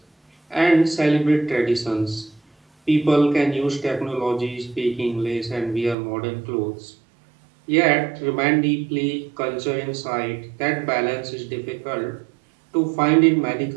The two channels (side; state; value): left; drops out; at 6.0 s